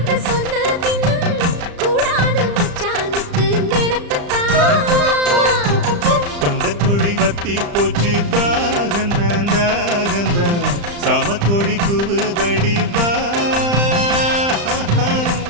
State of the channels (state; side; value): late; left; 35 ms